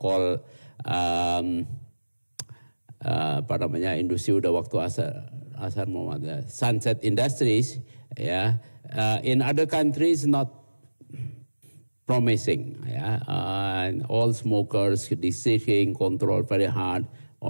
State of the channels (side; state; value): both; inverted; correlation -1.00